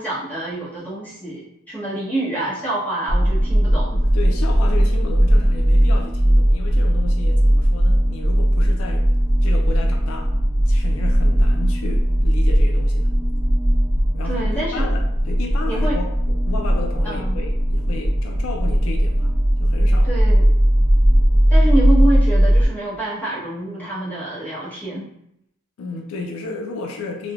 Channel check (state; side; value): normal; both; correlation 0.96